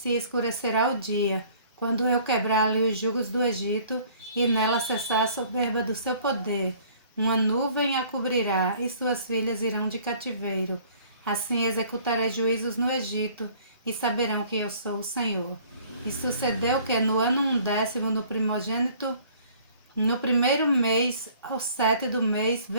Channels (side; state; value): both; inverted; correlation -0.55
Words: escurecerá o dia, quando eu quebrar ali os jugos do Egito, e nela cessar a soberba do seu poder. Uma nuvem a cobrirá, e suas filhas irão de cativeiro. Assim executarei juízos no Egito, e saberão que eu sou o Senhor. E sucedeu que no ano 10º, no primogênito, no primeiro mês, ao 7 do mês,